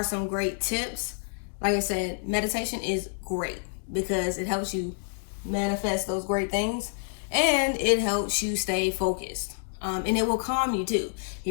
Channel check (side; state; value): right; silent; digital silence